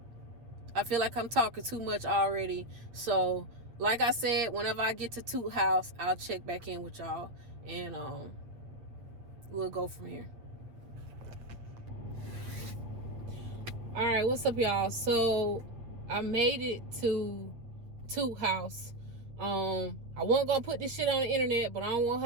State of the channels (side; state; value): left; late; 8.5 ms